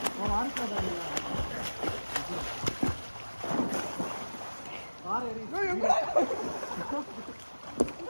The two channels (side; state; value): both; inverted; correlation -1.00